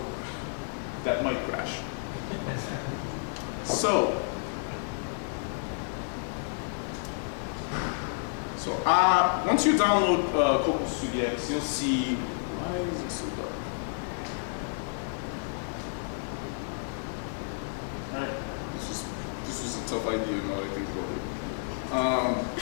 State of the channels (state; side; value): silent; right; digital silence